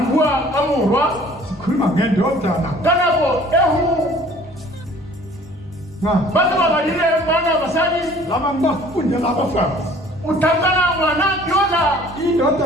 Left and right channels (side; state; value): both; normal; correlation 0.52